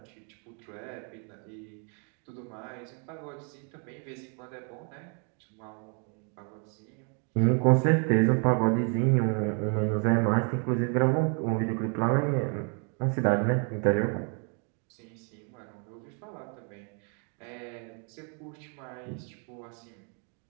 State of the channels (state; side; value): quieter; left; 39.5 dB